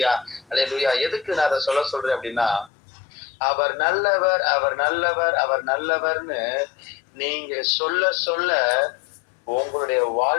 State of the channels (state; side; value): drops out; right; at 2.7 s